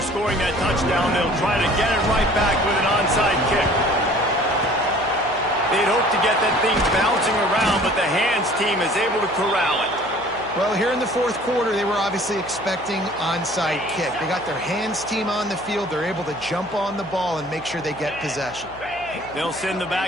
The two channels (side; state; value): right; noise; hum, 20 dB below the sound